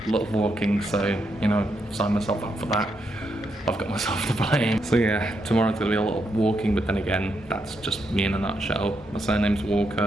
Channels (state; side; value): normal; both; correlation 0.80